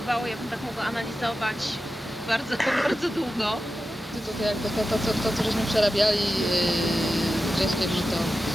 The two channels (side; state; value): both; normal; correlation 0.92